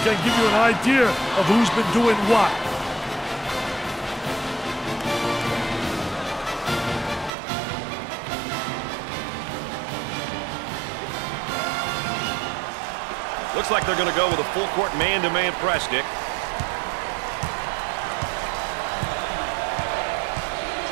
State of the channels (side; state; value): left; drops out; at 7.3 s